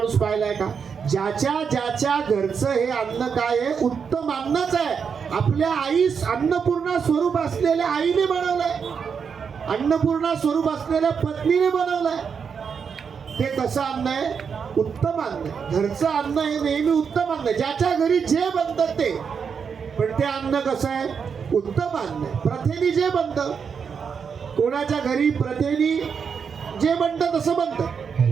पाहिलाय का? ज्याच्या ज्याच्या घरचं हे अन्न काय आहे? उत्तम अन्नच आहे. आपल्या आईस अन्नपूर्णा स्वरूप असलेल्या आईने बनवलंय, अन्नपूर्णा स्वरूप असलेल्या पत्नीने बनवलंय. ते कसं अन्न आहे? उत्तम अन्न. घरचं अन्न हे नेहमी उत्तम अन्न, ज्याच्या घरी जे बनतं ते. पण ते अन्न कसं आहे? उत्तम अन्न. प्रथेनी जे बनतं, कोणाच्या घरी प्रथेनी जे बनतं तसं बनतं,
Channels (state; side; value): quieter; left; 6.4 dB